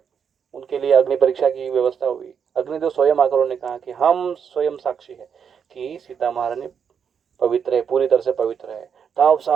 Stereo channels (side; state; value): left; quieter; 7.2 dB